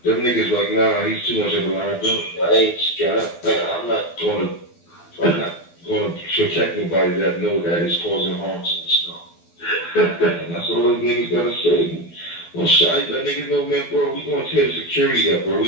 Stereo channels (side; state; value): right; late; 12 ms